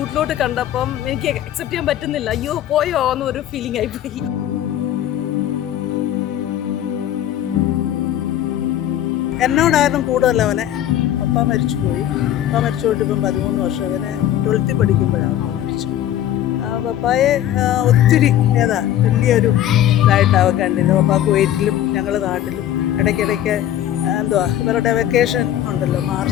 കണ്ടപ്പം എനിക്ക് അക്സെപ്റ്റ് ചെയ്യാൻ പറ്റുന്നില്ല. അയ്യോ പോയോ എന്നൊരു ഫീലിംഗ് ആയിപ്പോയി. എന്നോടായിരുന്നു കൂടുതൽ അവനെ. പപ്പ മരിച്ചുപോയി. പപ്പ മരിച്ചു പോയിട്ട് ഇപ്പം 13 വർഷം. അവനെ 12th പഠിക്കുമ്പോഴാണ് മരിച്ചു. പപ്പായെ ഒത്തിരി വലിയൊരു ഇതായിട്ടാണ് കണ്ടിരുന്നത്. പപ്പ കുവൈറ്റിലും ഞങ്ങൾ നാട്ടിലും ഇടയ്ക്കിടയ്ക്ക് ഇവരുടെ വെക്കേഷൻ ഉണ്ടല്ലോ,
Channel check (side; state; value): right; quieter; 11.8 dB